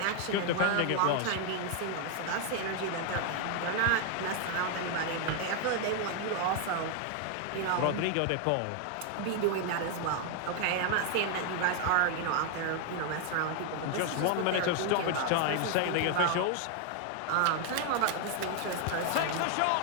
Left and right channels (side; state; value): both; different; correlation 0.00